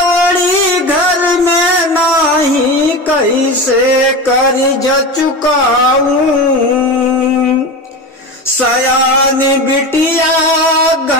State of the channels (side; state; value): both; normal; correlation 0.25